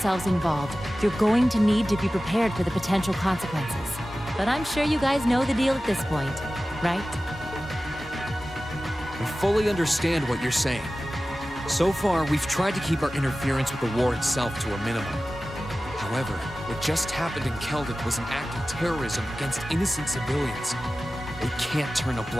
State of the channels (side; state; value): both; normal; correlation 0.96